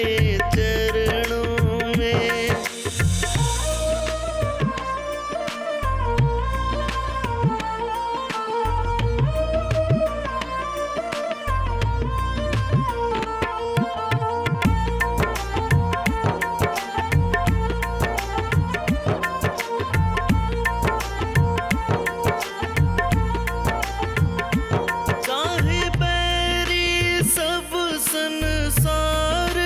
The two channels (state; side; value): identical; both; correlation 1.00